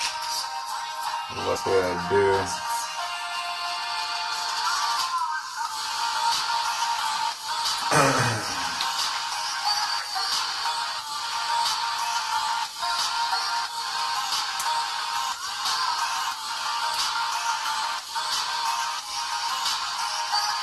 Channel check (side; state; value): both; identical; correlation 1.00